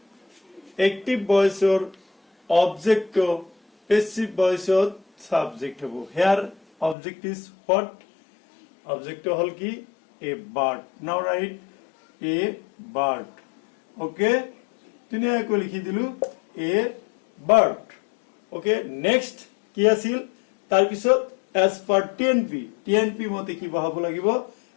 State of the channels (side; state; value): right; drops out; at 7.0 s